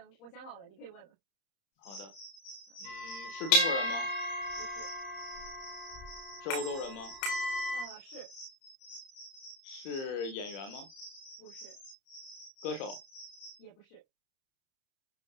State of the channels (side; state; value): right; late; 30 ms